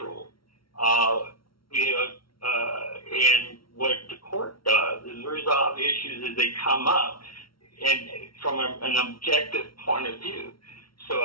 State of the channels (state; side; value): late; right; 0.74 ms